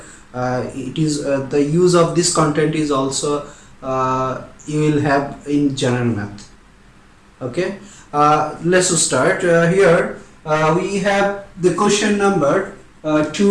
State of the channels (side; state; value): both; identical; correlation 1.00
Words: it is the use of this content is also you will have in general math. Okay, let's start. Here we have the question number